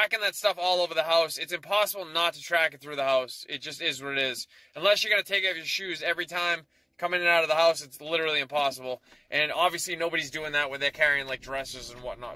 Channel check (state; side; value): identical; both; correlation 1.00